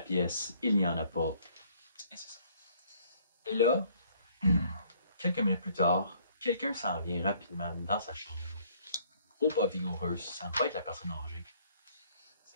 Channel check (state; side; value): inverted; both; correlation -0.62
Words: pièce, il n'y en a pas. Et c'est ça. Et là, quelques minutes plus tard, quelqu'un s'en vient rapidement dans sa chambre. Gros pas vigoureux, ça ne va être la personne âgée.